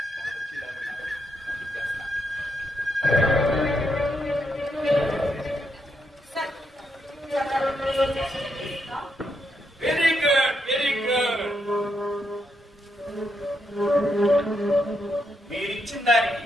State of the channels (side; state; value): both; normal; correlation 0.80